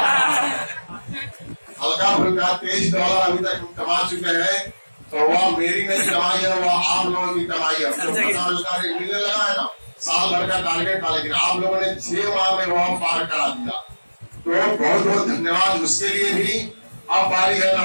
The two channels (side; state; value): both; inverted; correlation -1.00